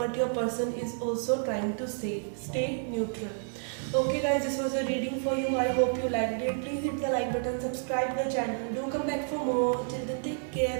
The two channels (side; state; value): left; silent; 58 dB below the other